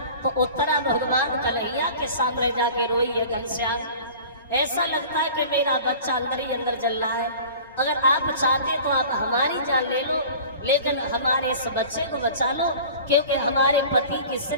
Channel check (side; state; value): both; inverted; correlation -0.42